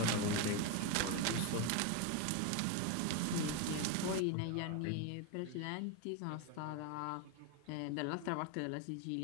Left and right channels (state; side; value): different; both; correlation 0.02